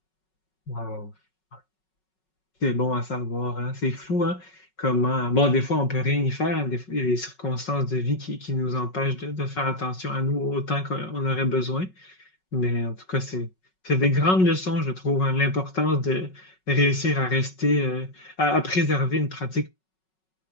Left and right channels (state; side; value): late; right; 5.4 ms